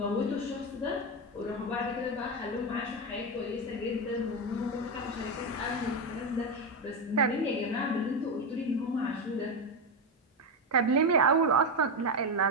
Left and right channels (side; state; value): both; normal; correlation 0.11